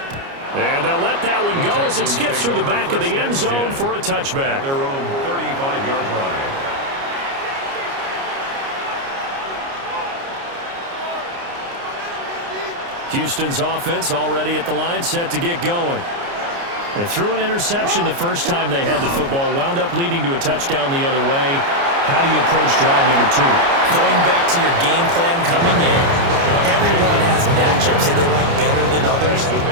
And they'll let that one go as it skips through the back of the end zone for a touchback. At their own 35-yard line. Houston's offense already at the line, set to get going. They threw an interception the first time they had the football, wound up leading to a touchdown the other way. How do you approach drive number 2? Going back to your game plan coming in, everyone has matchups that they like better than others.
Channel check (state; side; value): late; left; 29 ms